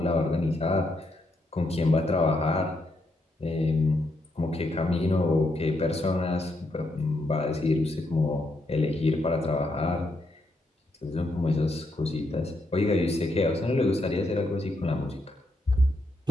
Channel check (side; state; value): both; normal; correlation 0.80